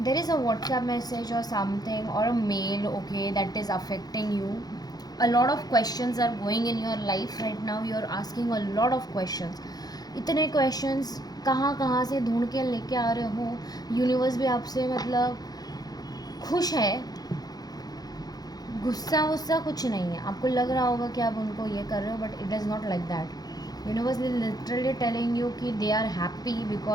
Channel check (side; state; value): right; late; 0.19 ms